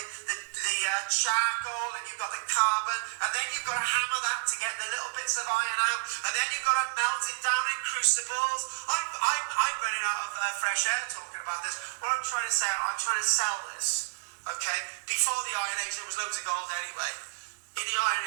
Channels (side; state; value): left; silent; digital silence